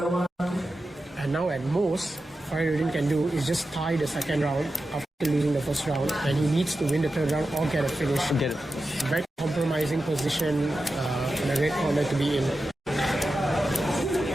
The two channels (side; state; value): both; normal; correlation 0.92